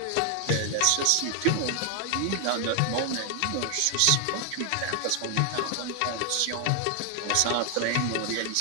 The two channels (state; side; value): different; both; correlation 0.00